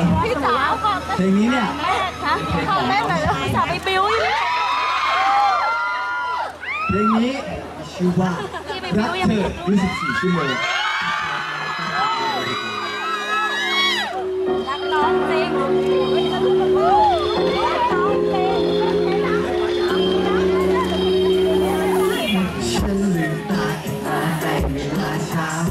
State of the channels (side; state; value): both; identical; correlation 1.00